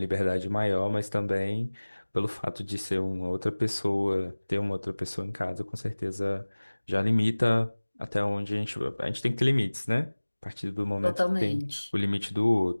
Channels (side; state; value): both; inverted; correlation -1.00